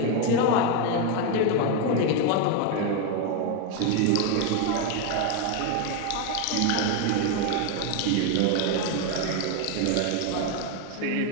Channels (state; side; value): different; both; correlation 0.02